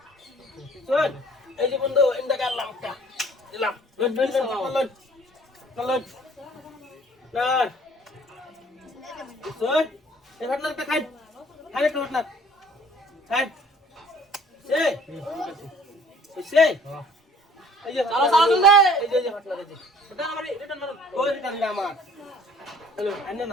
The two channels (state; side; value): normal; both; correlation 0.53